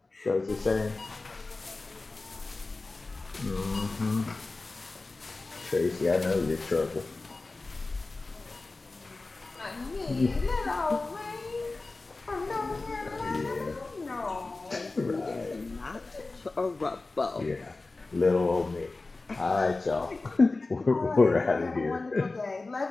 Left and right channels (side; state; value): right; quieter; 3.4 dB